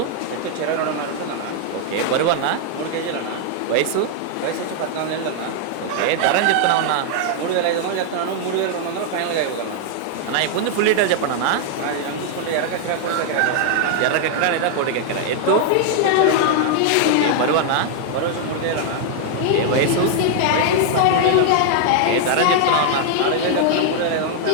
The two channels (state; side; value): different; both; correlation 0.00